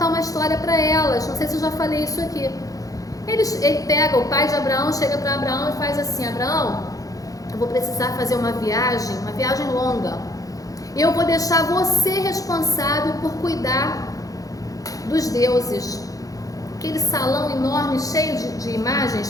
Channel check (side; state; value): right; late; 0.17 ms